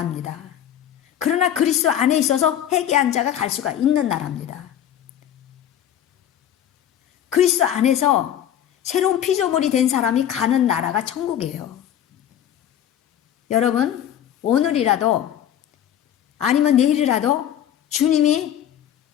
그러나 그리스도 안에 있어서 회개한 자가 갈 수가 있는 나라입니다. 그리스도 안에서 새로운 피조물이 된 사람이 가는 나라가 천국이에요. 여러분 오늘이라도 아니면 내일이라도 주님이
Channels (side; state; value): right; quieter; 10.5 dB